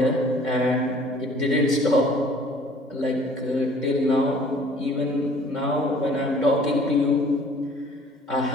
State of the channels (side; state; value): both; normal; correlation 0.53